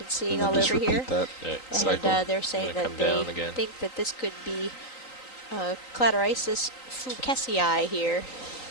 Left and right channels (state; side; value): late; right; 3.9 ms